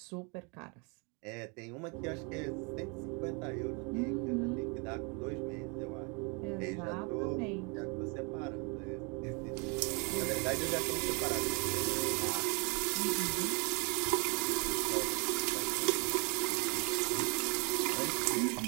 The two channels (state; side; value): quieter; left; 32.5 dB